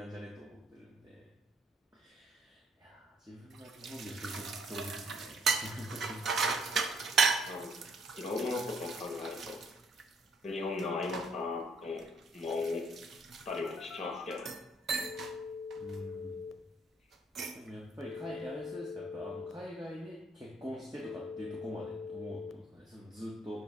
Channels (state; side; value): normal; both; correlation 0.66